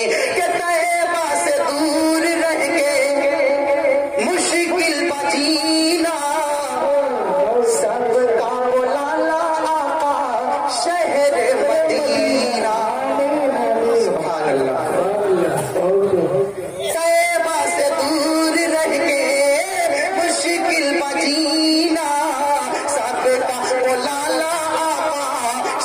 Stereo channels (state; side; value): identical; both; correlation 1.00